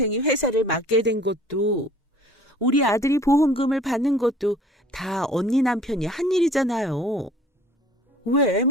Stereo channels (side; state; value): both; normal; correlation 0.50